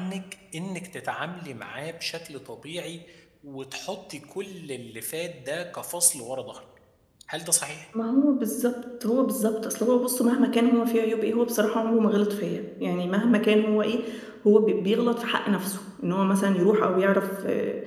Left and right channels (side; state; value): both; identical; correlation 1.00